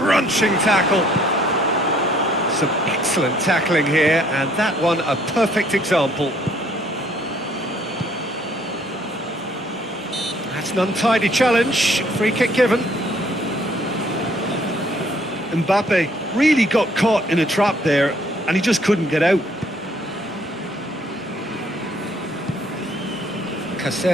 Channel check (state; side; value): normal; both; correlation 0.63